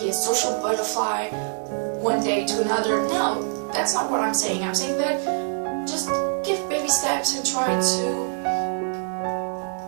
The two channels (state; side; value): silent; left; digital silence